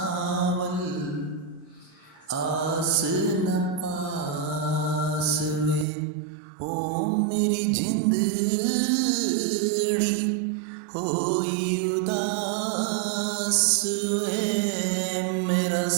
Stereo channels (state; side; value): drops out; left; at 5.9 s